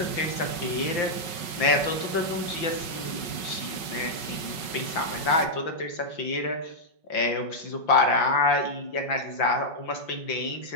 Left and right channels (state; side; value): late; right; 5.4 ms